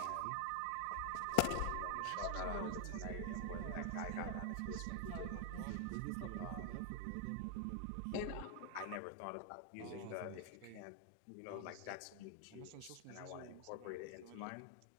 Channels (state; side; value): different; both; correlation 0.00